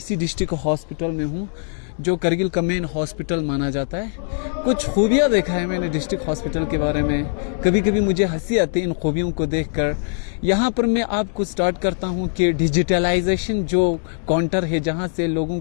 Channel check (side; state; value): right; silent; digital silence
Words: डिस्ट्रिक्ट हॉस्पिटल में हूँ, जो करगिल का मेन हॉस्पिटल माना जाता है। कुछ खूबियाँ देखा है मैंने डिस्ट्रिक्ट हॉस्पिटल के बारे में। कभी कभी मुझे हंसी आती है इन खूबियों को देखकर। यहाँ पर मैं आपको स्टार्ट करता हूँ कि डिजिटलाइजेशन जो काउंटर है जहाँ से लोगों